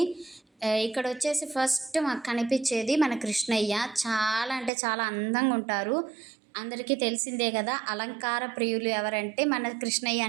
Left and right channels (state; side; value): drops out; left; at 4.7 s